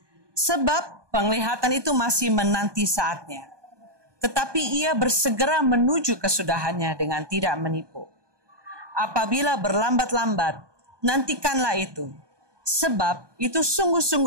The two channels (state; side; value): late; left; 1.2 ms